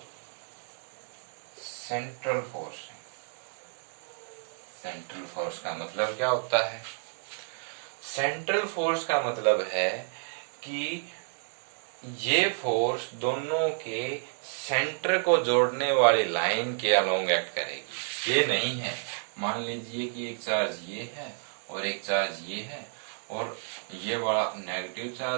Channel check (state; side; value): silent; left; 58 dB below the other